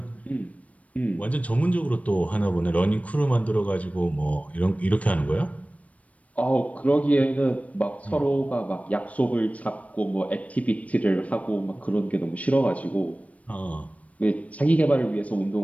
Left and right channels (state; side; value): late; right; 0.066 ms